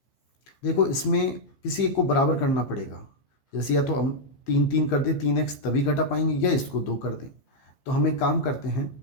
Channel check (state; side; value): late; right; 15 ms